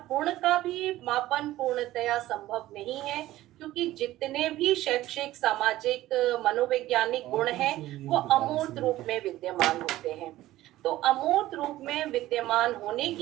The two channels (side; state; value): left; quieter; 15.6 dB